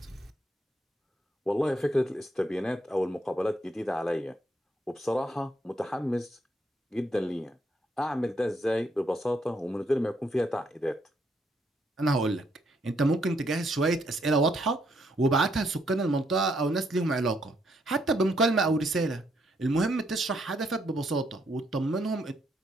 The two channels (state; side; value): normal; both; correlation 0.74